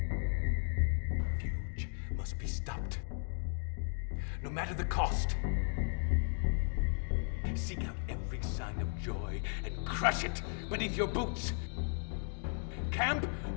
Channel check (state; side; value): silent; right; 54 dB below the other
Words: Fuge must be stopped. No matter the cost. Seek out every sign of joy and crush it beneath your boots. Camp